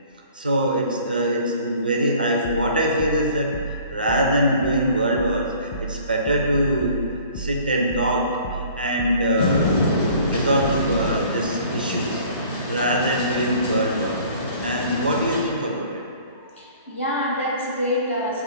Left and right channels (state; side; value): inverted; both; correlation -0.52